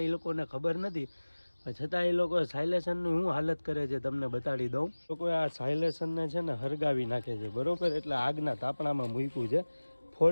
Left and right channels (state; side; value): inverted; both; correlation -1.00